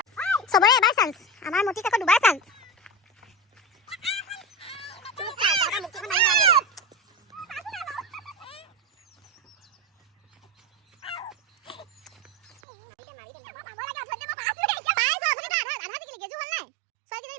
সবৰে এবাৰ চান্স আমাৰ মতি কাকো দুবাৰ চান্স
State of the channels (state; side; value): drops out; left; at 12.5 s